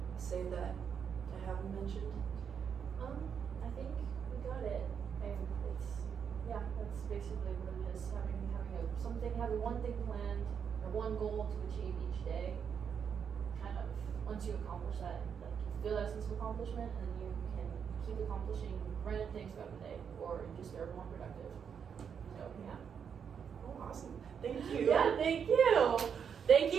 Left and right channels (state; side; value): quieter; left; 7.2 dB